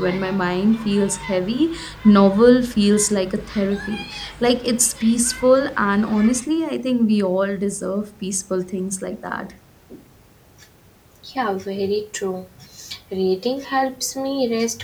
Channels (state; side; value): identical; both; correlation 1.00